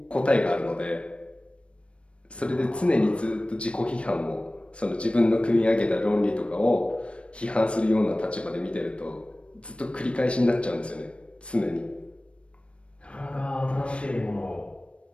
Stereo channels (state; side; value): late; right; 0.060 ms